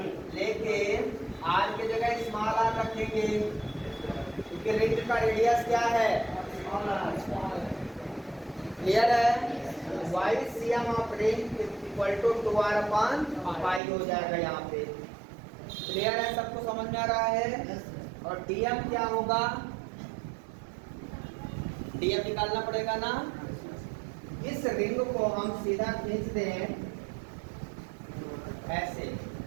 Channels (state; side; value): drops out; left; at 13.8 s